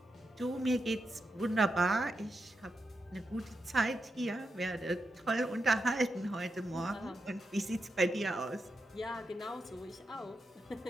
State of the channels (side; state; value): both; normal; correlation 0.86